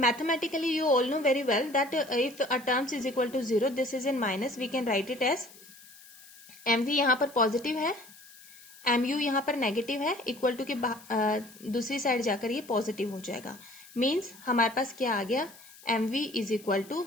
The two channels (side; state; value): left; noise; hiss, 21 dB below the sound